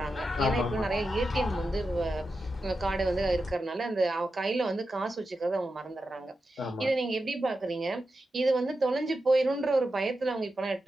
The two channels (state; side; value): normal; both; correlation 0.90